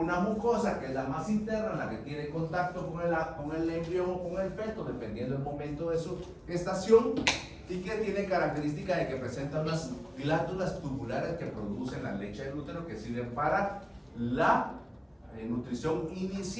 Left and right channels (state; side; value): identical; both; correlation 1.00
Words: mucosa, que es la más interna, la que tiene contacto con el embrión o con el feto, dependiendo del momento de su gestación, y que tiene característica de que presenta unas glándulas tubulares que producen la leche del útero, que sirven para la nutrición